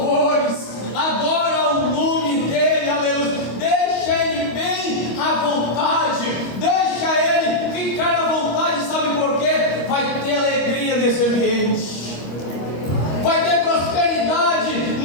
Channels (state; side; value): late; right; 25 ms